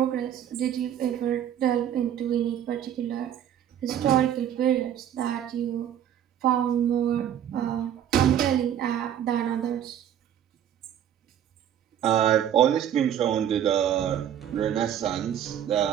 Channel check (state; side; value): quieter; left; 10.1 dB